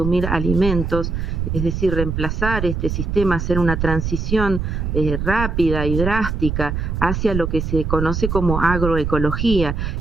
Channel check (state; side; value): noise; right; rumble, 2 dB below the sound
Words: alimentos, es decir, reemplazar este sistema, hacer una transición rápida y drástica hacia lo que se conoce como agroecología,